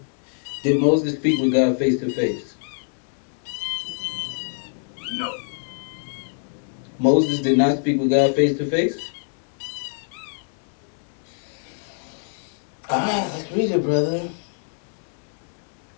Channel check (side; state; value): right; silent; 62 dB below the other